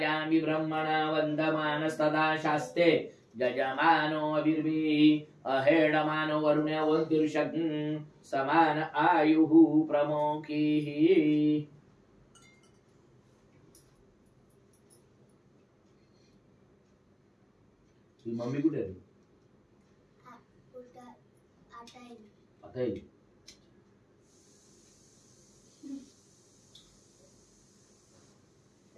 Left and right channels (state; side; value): identical; both; correlation 1.00